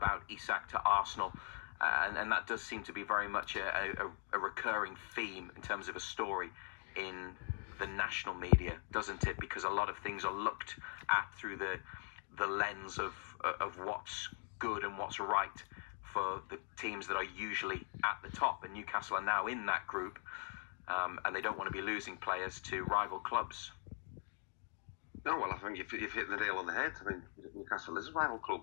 Isak to Arsenal, and that does seem to be very much a recurring theme in terms of a story in the national media, doesn't it? Because a lot of things are looked at through the lens of what's good and what's right for the teams that are usually at the top, and Newcastle are now in that group, and they don't want to be losing players to rival clubs. No, well, I think you've hit the nail on the head. I mean, Newcastle is a rival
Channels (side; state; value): right; silent; 50 dB below the other